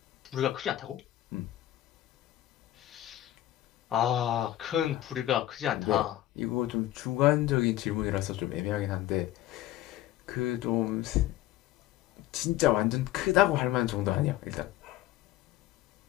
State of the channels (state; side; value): quieter; right; 14.3 dB